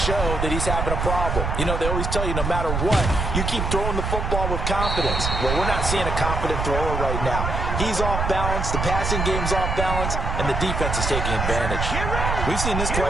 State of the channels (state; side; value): noise; right; rumble, 1 dB below the sound